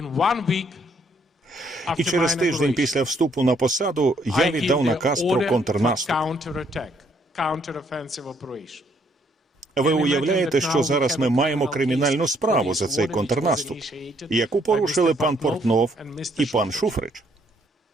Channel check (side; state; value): both; normal; correlation 0.69